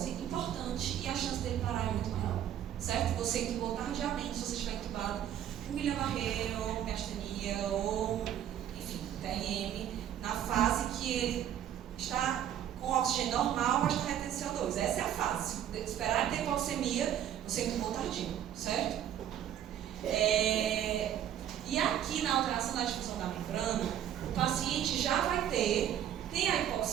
importante e a chance dele parar é muito maior, certo? Você entubou tardiamente, se você estiver entubado com Guillain-Barré ou miastenia ou, enfim, TRM, na fase que ele está com oxigênio normal, mas está retendo CO2. Essa é a fase. Esperar ter hipoxemia, você entubou tardio, certo? E a aqui na alteração da difusão da membrana, o paciente já vai tem a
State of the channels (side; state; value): left; quieter; 10.6 dB